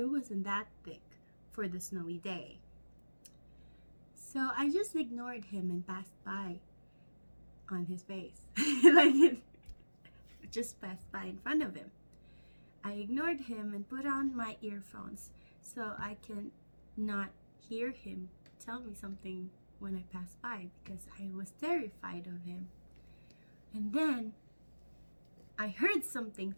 wasn't that thick for the snowy day. So I just ignored him and passed by. on his face. Like it just passed by in front of him. I ignored him and put on my earphones so I can not hear him tell me something when I passed by because I was terrified of him. And then I heard something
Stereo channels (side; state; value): both; inverted; correlation -1.00